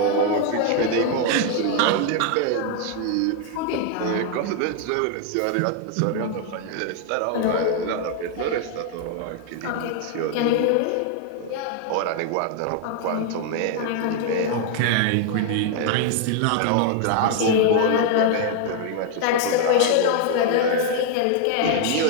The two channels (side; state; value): both; different; correlation 0.00